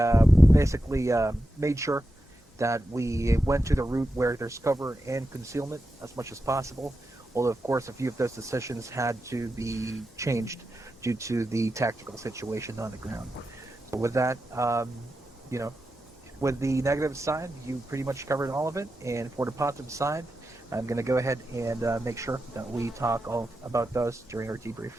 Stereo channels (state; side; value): normal; both; correlation 0.89